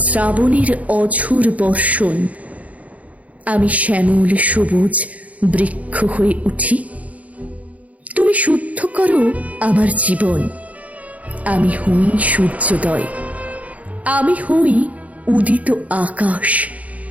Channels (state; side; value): late; left; 0.070 ms